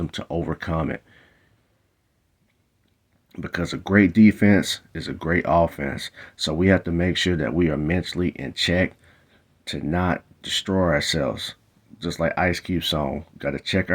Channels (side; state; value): both; identical; correlation 1.00